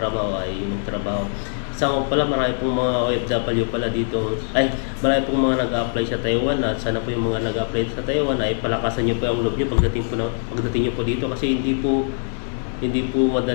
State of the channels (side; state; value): right; silent; 63 dB below the other